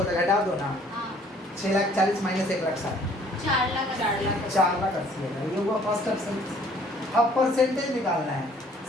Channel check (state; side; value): normal; both; correlation 0.58